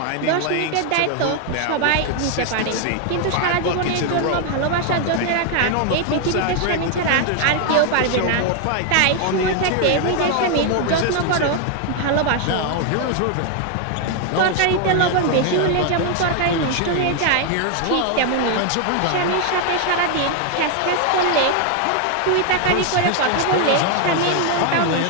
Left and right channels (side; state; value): both; different; correlation 0.01